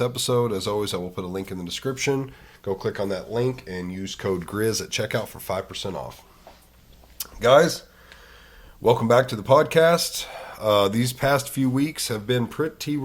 As always, I will put a link in the description. Go click on that link and use code GRIZZ at checkout for 5% off. Guys, welcome back to the podcast. These past few weeks have been pretty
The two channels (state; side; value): identical; both; correlation 1.00